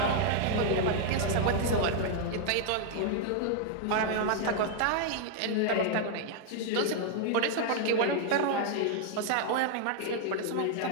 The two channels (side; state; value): both; different; correlation 0.00